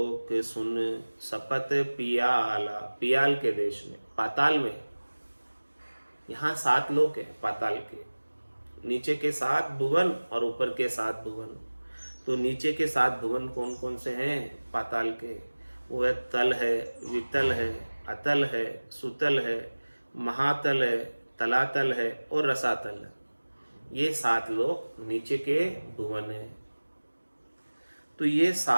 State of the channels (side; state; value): both; inverted; correlation -1.00